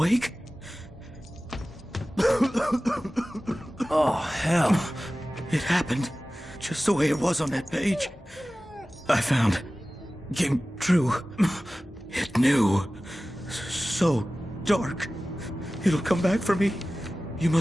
Oh, hell. It happened just the way it was on that page. I found. Came true. It knew. So dark. It'll come back for me. You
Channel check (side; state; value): both; normal; correlation 0.96